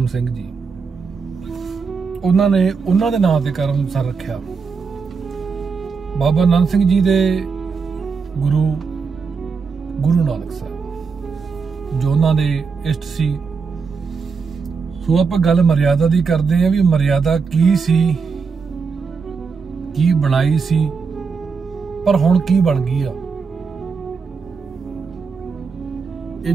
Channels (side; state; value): left; quieter; 5.3 dB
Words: ਸਿੰਘ ਜੀ, ਉਹਨਾਂ ਨੇ ਉਹਨਾਂ ਦੇ ਨਾਂ ਤੇ ਕਰਮਸਰ ਰੱਖਿਆ। ਬਾਬਾ ਨੰਦ ਸਿੰਘ ਜੀ ਦੇ ਗੁਰੂ ਨਾਨਕ ਸਾਹਿਬ ਜੋ ਉਹਨਾਂ ਦੇ ਇਸ਼ਟ ਸੀ। ਸੋ ਆਪਾਂ ਗੱਲ ਮਰਿਆਦਾ ਦੀ ਕਰਦੇ ਆ ਵੀ ਮਰਿਆਦਾ ਕੀ ਸੀ, ਕੀ ਬਣਾਈ ਸੀ, ਪਰ ਹੁਣ ਕੀ ਬਣ ਗਈ ਆ। ਇਹ